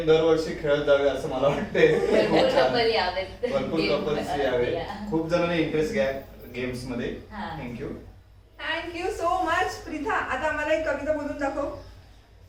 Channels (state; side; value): identical; both; correlation 1.00